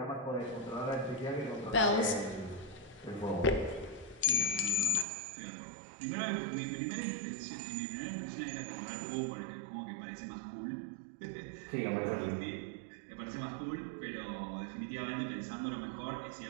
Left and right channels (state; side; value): drops out; left; at 5.1 s